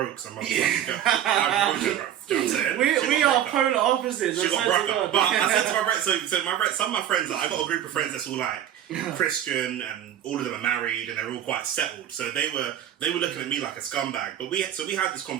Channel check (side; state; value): left; quieter; 10.9 dB